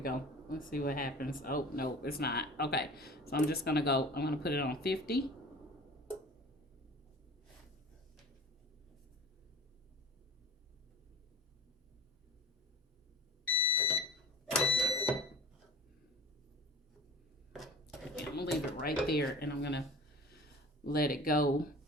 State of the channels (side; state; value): both; normal; correlation 0.41